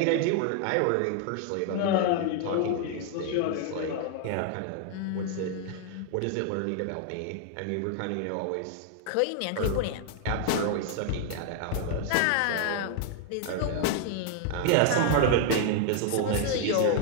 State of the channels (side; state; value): both; different; correlation 0.00